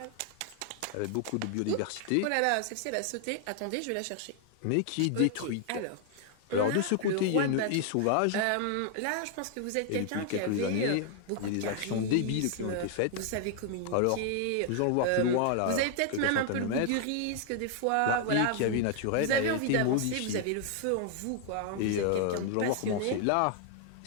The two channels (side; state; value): both; different; correlation 0.00